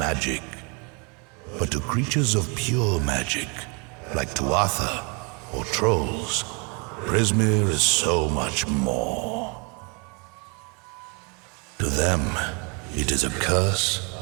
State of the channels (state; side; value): quieter; left; 33.3 dB